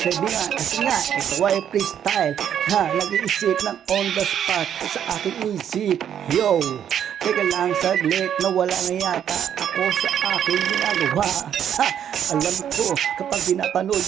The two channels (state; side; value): quieter; left; 9.3 dB